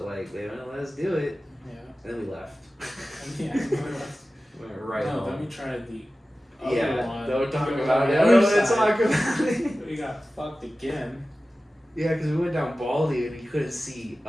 like they didn't let us do it. Yeah. And then we left. Yeah. Went right no, home. then we tried the other Yeah, one. don't talk We went about on it. the I other don't want to side. talk about it. We got fucked again. Yeah, because we went down Baldy and you couldn't see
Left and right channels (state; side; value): normal; both; correlation 0.95